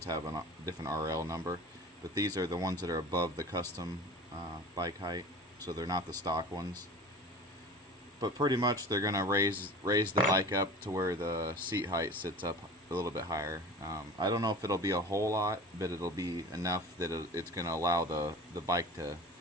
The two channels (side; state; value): both; normal; correlation 0.38